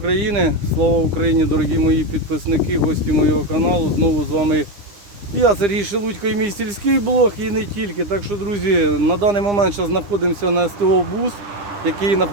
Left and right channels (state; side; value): late; left; 9.8 ms